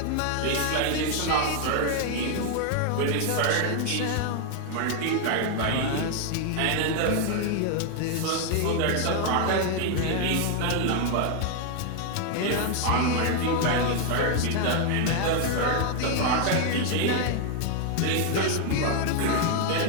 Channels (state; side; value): different; both; correlation 0.00